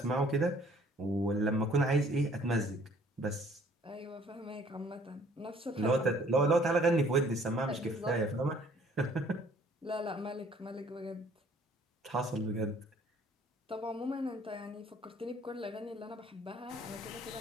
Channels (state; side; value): normal; both; correlation 0.58